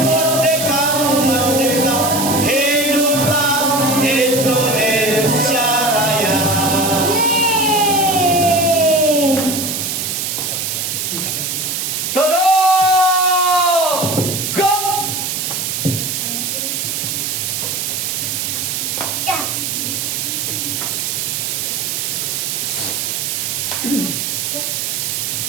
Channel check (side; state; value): right; noise; hiss, 2 dB below the sound